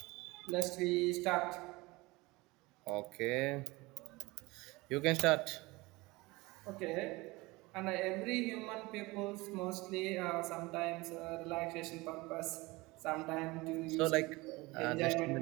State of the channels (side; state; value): left; quieter; 22.6 dB